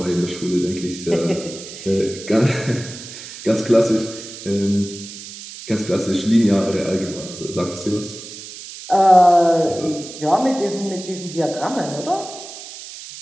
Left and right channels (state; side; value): noise; right; hiss, 13 dB below the sound